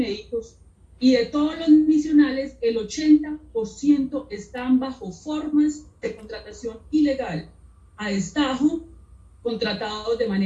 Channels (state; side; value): identical; both; correlation 1.00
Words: y de todos los misionales, el 80% están bajo formas de contratación ilegal, a destajo, contratados de